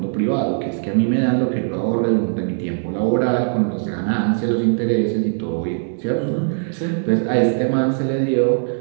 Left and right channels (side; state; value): left; silent; digital silence